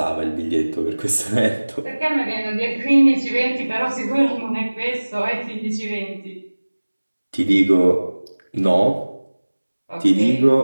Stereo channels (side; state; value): both; inverted; correlation -1.00